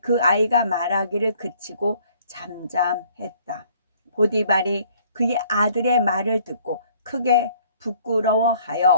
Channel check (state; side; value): inverted; both; correlation -0.58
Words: 아이가 말하기를 그치고 잠잠했다. 보디발이 그의 아들의 말을 듣고 크게